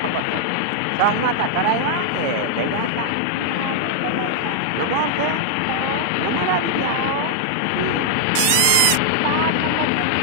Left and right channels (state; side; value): different; both; correlation -0.01